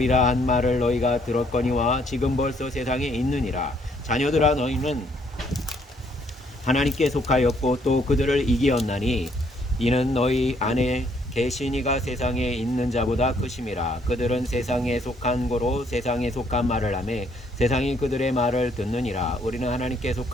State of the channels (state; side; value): normal; both; correlation 0.68